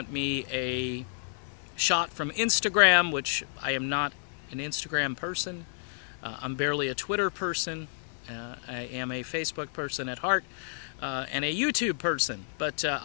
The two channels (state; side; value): silent; right; digital silence